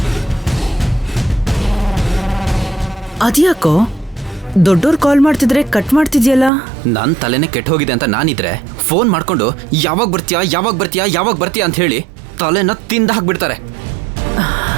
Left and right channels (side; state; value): left; drops out; at 6.5 s